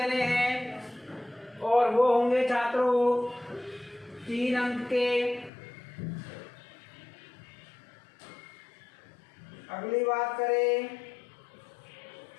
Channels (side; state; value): right; drops out; at 5.5 s